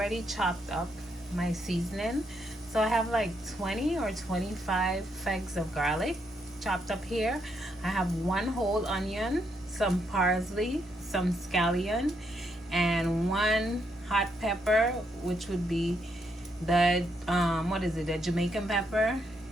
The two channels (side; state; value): both; normal; correlation 0.77